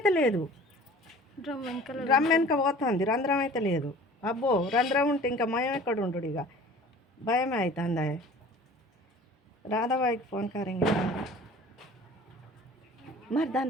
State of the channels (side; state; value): both; normal; correlation 0.45